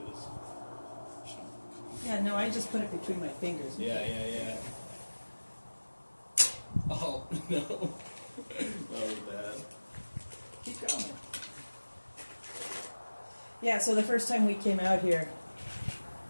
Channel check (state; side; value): inverted; both; correlation -1.00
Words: this. Yeah, no, I just put it between my fingers. Yeah. Oh, no. That was bad. Keep going. Yeah, so the first time we came out here,